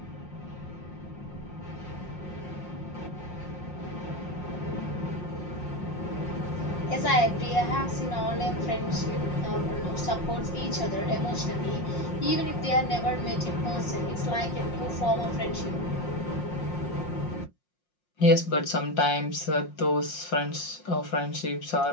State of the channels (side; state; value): right; late; 5.6 ms